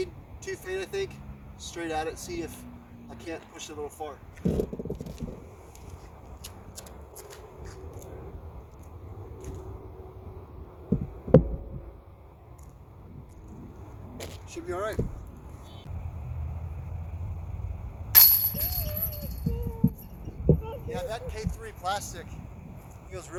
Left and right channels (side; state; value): both; identical; correlation 1.00